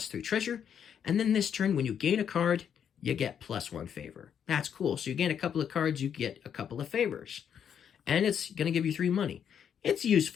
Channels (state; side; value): quieter; right; 8.3 dB